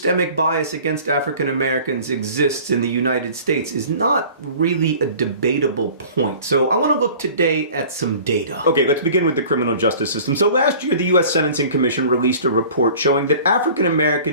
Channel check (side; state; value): both; inverted; correlation -0.45